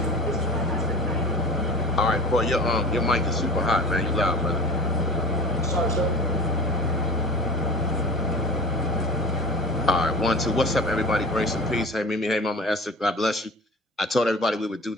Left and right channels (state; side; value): normal; both; correlation 0.38